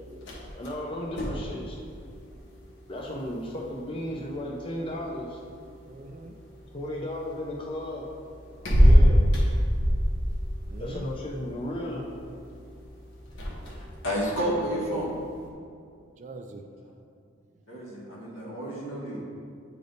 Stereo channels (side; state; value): both; normal; correlation 0.87